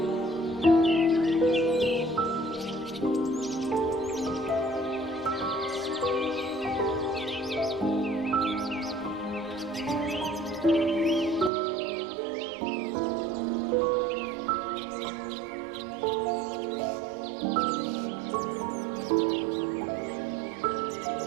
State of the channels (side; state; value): left; drops out; at 11.5 s